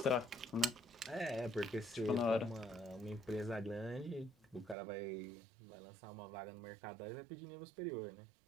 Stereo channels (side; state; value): left; drops out; at 4.8 s